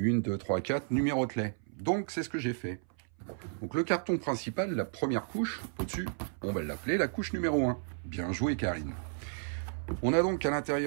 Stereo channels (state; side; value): silent; left; 56 dB below the other